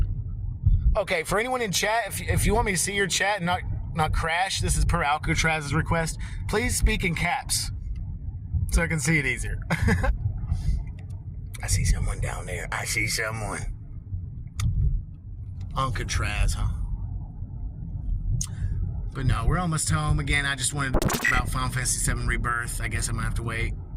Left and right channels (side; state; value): both; identical; correlation 1.00